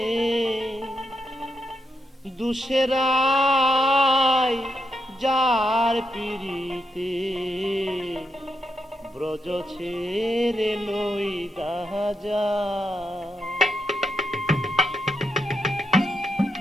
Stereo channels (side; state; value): both; normal; correlation 0.82